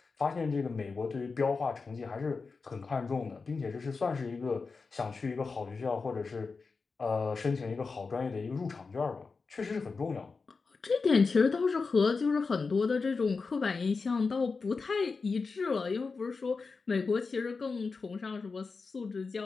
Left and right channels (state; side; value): quieter; right; 4.5 dB